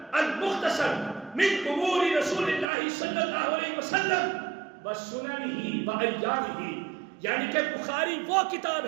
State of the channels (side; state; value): left; drops out; at 2.7 s